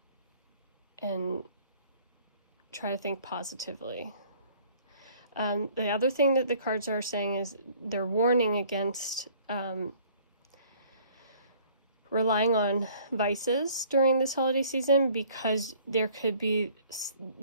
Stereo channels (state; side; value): inverted; both; correlation -0.56